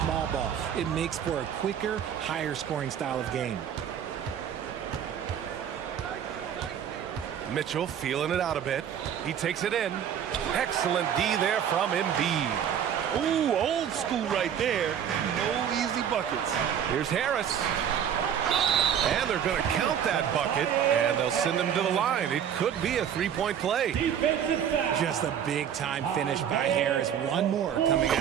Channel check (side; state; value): left; quieter; 8.9 dB